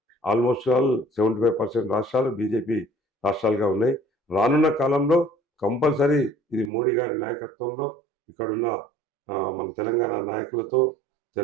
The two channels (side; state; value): left; drops out; at 6.7 s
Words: ఆల్మోస్ట్ ఆల్ 75% రాష్ట్రాలు బీజేపీ రాష్ట్రాలుగా ఉన్నాయి. రానున్న కాలంలో కంపల్సరీ ఇది మోడీ గారి నాయకత్వంలో ఇక్కడున్న మన తెలంగాణ నాయకులతో